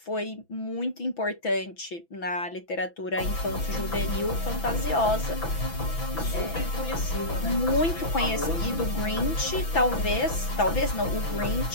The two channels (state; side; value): late; right; 6.0 ms